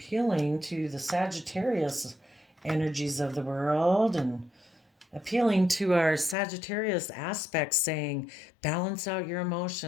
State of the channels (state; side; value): drops out; right; at 6.4 s